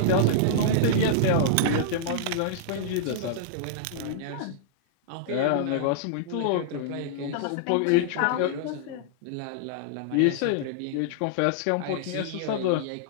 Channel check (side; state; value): both; different; correlation -0.02